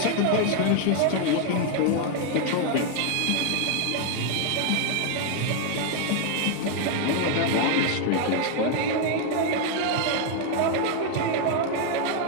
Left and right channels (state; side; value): different; both; correlation 0.01